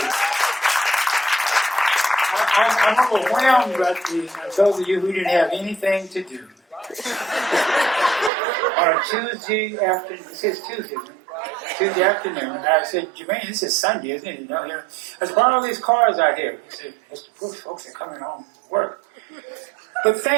I'm overwhelmed by those of you who didn't have anything to do. On a Tuesday afternoon, this is Tuesday, Tuesday afternoon, I said, Jermaine, this is Sunday, isn't it? You know, there's all these cars out here. He said, Mr. Brooks, folks are coming home from work. But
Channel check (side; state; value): left; drops out; at 8.3 s